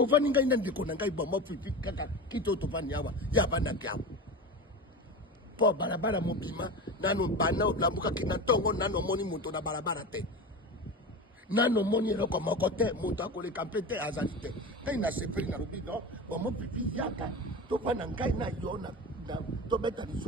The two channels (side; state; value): both; normal; correlation 0.28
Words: ngai na ndeko na ngai bomo pipi kaka kito tovani yawa ya bana kyao po barabara mobima nano bana olambuka kina tongo nano moni moto na barabara te nano moni eloko moko te moto akoleka mpe te azali te ngai na sepeli na lobi no bomo pipi yaka tovana ngai na yo na tobeta